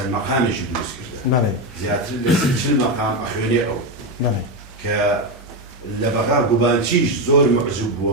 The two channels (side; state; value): both; normal; correlation 0.11